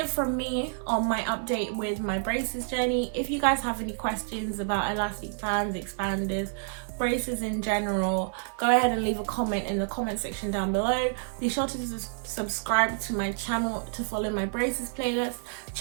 from me on my update with my braces journey. If you guys have any questions about elastic bands, expanders, braces in general, go ahead and leave a comment in the comment section down below. Be sure to subscribe to my channel to follow my braces playlist.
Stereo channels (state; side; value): silent; left; 59 dB below the other